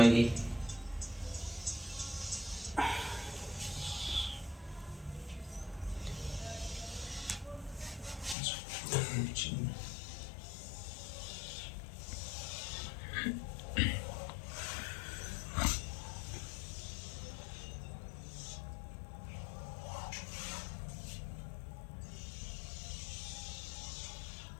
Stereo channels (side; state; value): right; drops out; at 8.3 s